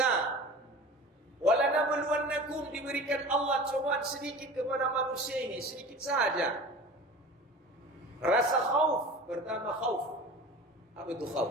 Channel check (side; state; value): both; normal; correlation 0.38